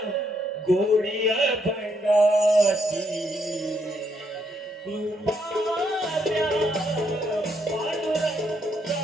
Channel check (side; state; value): both; normal; correlation 0.75